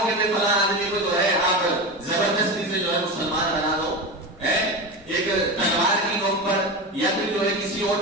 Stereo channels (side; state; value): both; normal; correlation 0.22